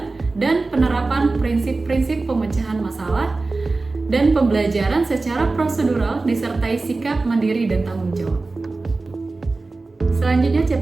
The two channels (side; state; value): left; quieter; 3.5 dB